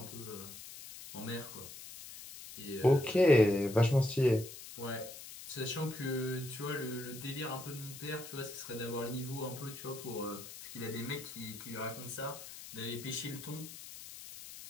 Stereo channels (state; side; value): noise; left; hiss, 13 dB below the sound